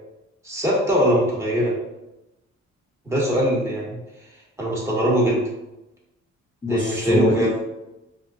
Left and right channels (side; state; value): both; normal; correlation 0.48